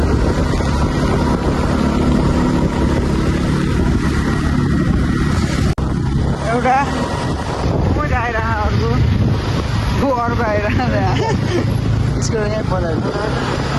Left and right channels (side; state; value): both; identical; correlation 1.00